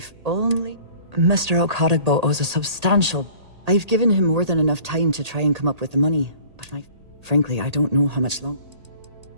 only... Mr. Okadibo owes a substantial... I've given him more than enough time to try and come up with the money, but frankly, I don't know how much longer.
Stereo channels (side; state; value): left; late; 1.8 ms